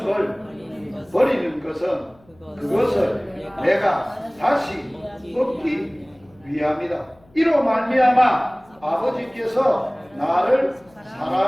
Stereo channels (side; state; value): left; noise; hum, 30 dB below the sound